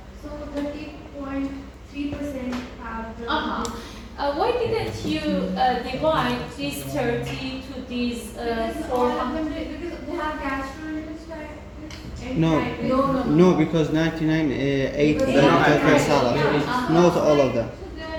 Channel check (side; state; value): both; identical; correlation 1.00